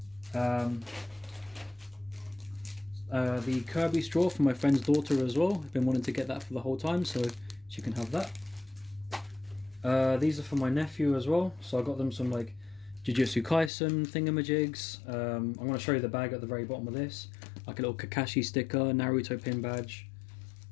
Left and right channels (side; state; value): right; drops out; at 13.7 s